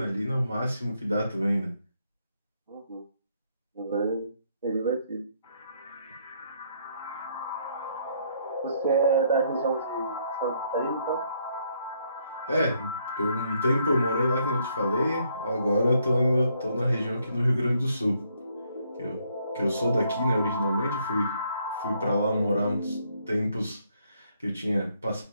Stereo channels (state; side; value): inverted; both; correlation -0.71